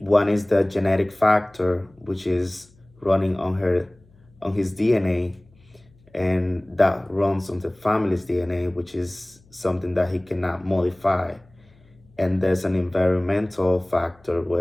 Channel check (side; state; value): left; noise; hum, 29 dB below the sound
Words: is the genetic factor, which is running on his DNA, and that runs on the family's DNA, which is something that he cannot modify. And there's an environmental factor